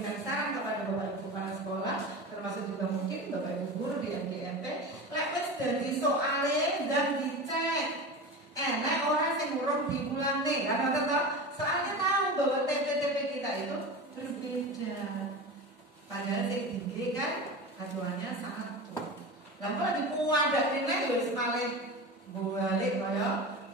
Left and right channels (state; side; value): normal; both; correlation 0.28